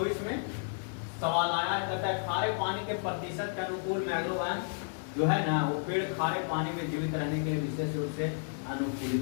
में सवाल आया है, कहता है खारे पानी के प्रतिशत के अनुकूल मैंग्रोव वन जो है ना, वो पेड़ खारे पानी में जीवित रहने के लिए विशेष रूप से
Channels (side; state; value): right; silent; digital silence